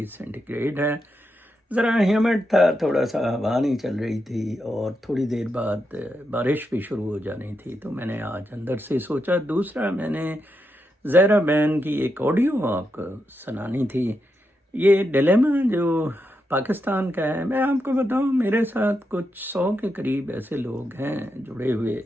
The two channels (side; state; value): both; normal; correlation 0.84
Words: سینٹی گریڈ ہے۔ ذرا ہیومڈ تھا، تھوڑا سا ہوا نہیں چل رہی تھی اور تھوڑی دیر بعد بارش بھی شروع ہو جانی تھی، تو میں نے آج اندر سے سوچا۔ دوسرا، میں نے زہرا بین کی ایک آڈیو آپ کو سنانی تھی۔ یہ ڈیلیما جو پاکستان کا ہے، میں آپ کو بتاؤں، میرے ساتھ کچھ 100 کے قریب ایسے لوگ ہیں جڑے ہوئے